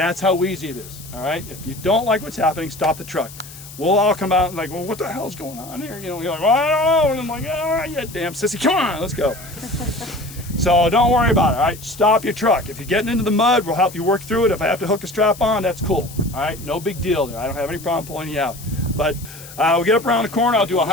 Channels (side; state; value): left; noise; hiss, 16 dB below the sound